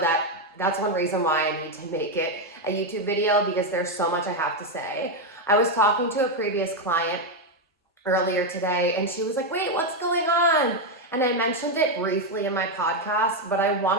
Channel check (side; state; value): both; normal; correlation 0.05